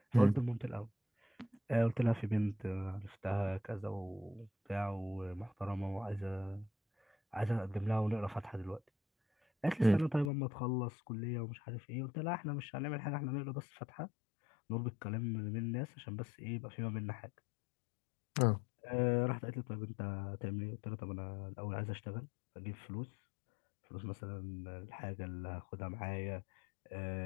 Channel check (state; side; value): drops out; right; at 10.3 s